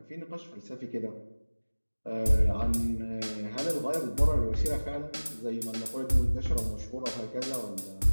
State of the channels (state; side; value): inverted; both; correlation -1.00